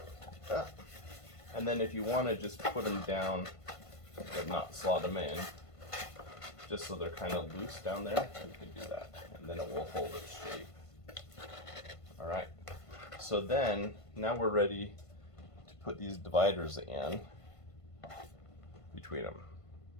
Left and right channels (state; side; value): late; right; 1.5 ms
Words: that. And then if you want to just put them down but not slot them in, just so they're kind of loose down there, you can do that, and then it will hold its shape. All right, so then now we're ready to put these dividers in between them.